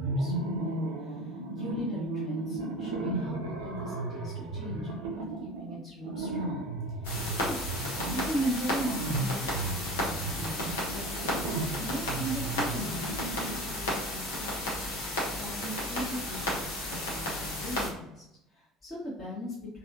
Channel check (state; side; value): normal; both; correlation 0.34